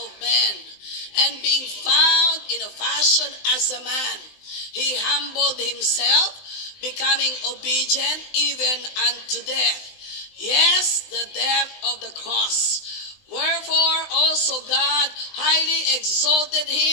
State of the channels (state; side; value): late; right; 19 ms